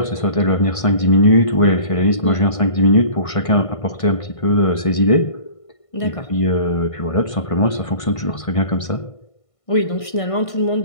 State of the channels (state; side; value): late; right; 1.5 ms